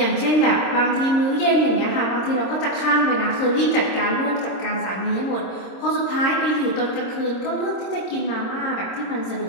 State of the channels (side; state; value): right; late; 26 ms